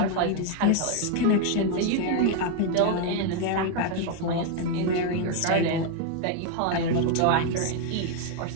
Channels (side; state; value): both; different; correlation 0.01